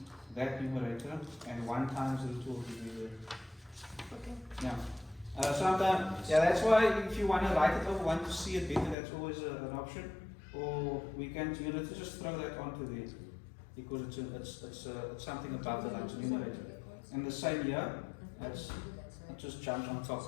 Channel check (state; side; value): drops out; right; at 9.0 s